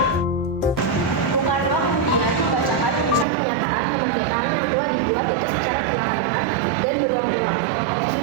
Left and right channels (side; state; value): left; drops out; at 3.2 s